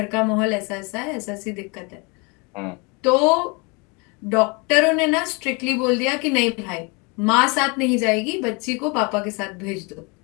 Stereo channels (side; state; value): right; quieter; 30.3 dB